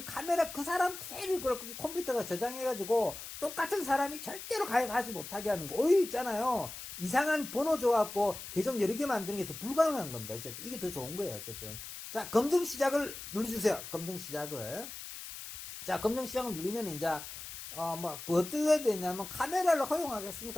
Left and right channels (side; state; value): left; noise; hiss, 10 dB below the sound